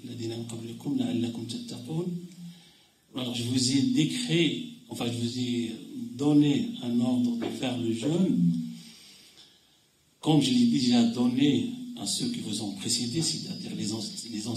alors je vous ai décrit, je vous ai donné un ordre de faire le jeûne, comme je l'ai déjà donné à ceux qui vous ont précédés, c'est-à-dire les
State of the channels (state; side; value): identical; both; correlation 1.00